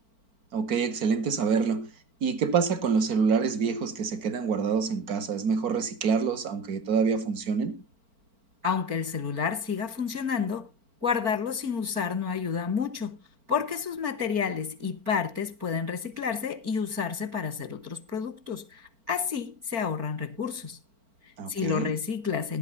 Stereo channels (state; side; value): late; left; 4.4 ms